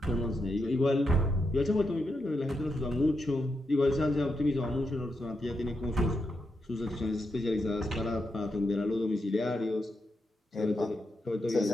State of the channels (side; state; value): both; normal; correlation 0.84